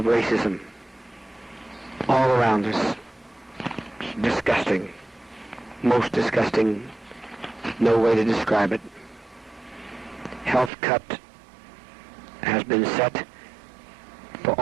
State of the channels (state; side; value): drops out; left; at 10.7 s